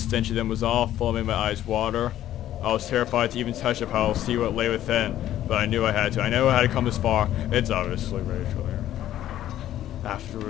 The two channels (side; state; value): right; quieter; 12.6 dB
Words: of them was awful, made my eyes water. I was terrified to even touch the pile, see what lay within, but I knew I had to. I knew I had to come this far. It's obviously Rachel here.